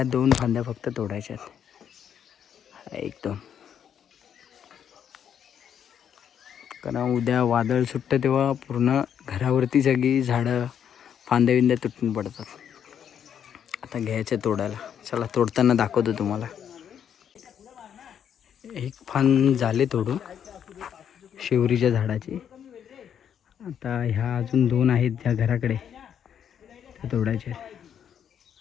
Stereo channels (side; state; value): right; quieter; 8.7 dB